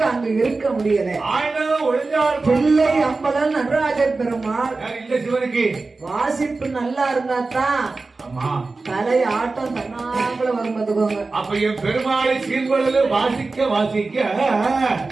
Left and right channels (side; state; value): left; quieter; 3.7 dB